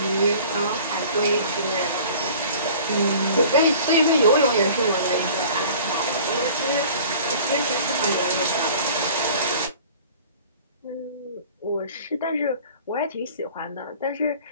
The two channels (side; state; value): both; inverted; correlation -0.47